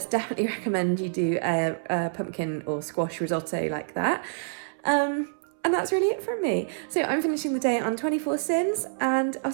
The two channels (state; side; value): silent; left; 60 dB below the other